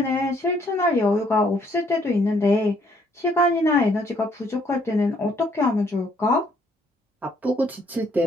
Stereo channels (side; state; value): both; normal; correlation 0.67